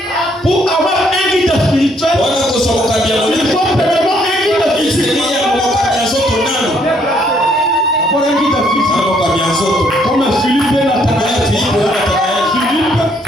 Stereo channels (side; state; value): both; normal; correlation 0.68